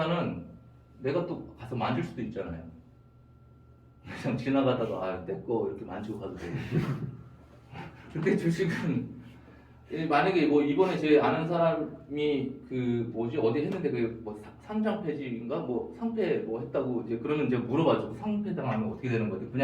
내가 또 가서 만질 수도 있잖아요. 그냥 지나가다가 내 거 이렇게 만지고 가도 되고. 근데 주식은 만약에 뭐 이번에 제 아는 사람이 그 뭐지 어디 했는데 그 뭐 상장 폐지인가 뭐 상폐 뭐 했다고 이제 그러면 이제 물어봐주고 상폐 당하면 어떻게 되는 거지?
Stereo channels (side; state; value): both; identical; correlation 1.00